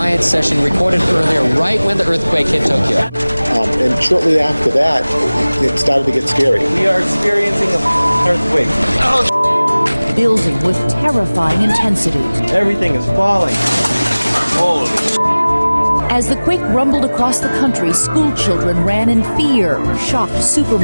session recorded earlier, right when the earthquake hit Tokyo. And shortly after that, it started to get scary. We are experiencing an earthquake. Building with terrifying intensity. Everything is falling. Holy. As the quake rumbled across the country, school children ran in fear. Shocked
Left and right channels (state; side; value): inverted; both; correlation -0.99